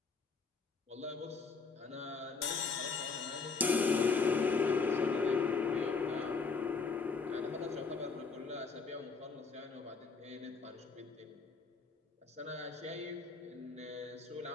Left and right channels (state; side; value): quieter; right; 4.7 dB